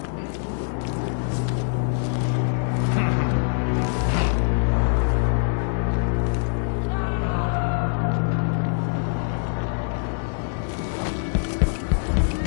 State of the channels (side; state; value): right; silent; digital silence